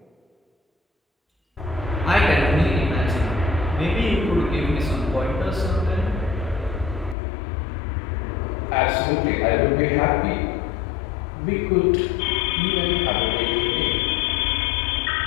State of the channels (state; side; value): drops out; right; at 7.2 s